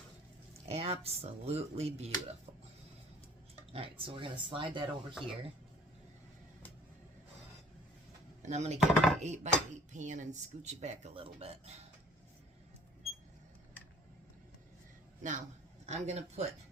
Absolutely beautiful. Alright, so we're going to slide that over here. And I'm going to get my 8x8 pan and scooch it back a little bit. Now, I'm going to put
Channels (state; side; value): normal; both; correlation 0.53